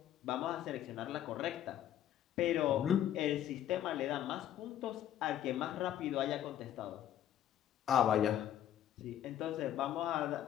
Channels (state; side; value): quieter; right; 11.1 dB